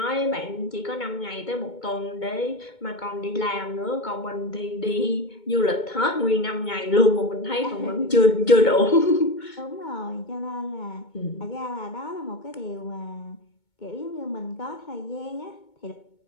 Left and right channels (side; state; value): right; late; 2.2 ms